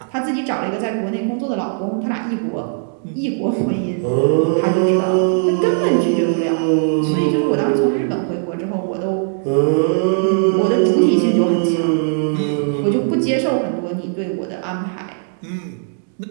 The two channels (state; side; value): silent; left; digital silence